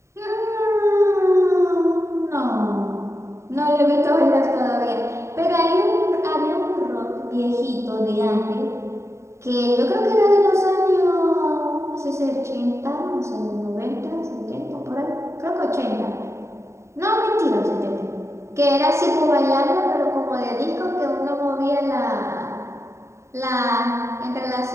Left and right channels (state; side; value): late; left; 0.14 ms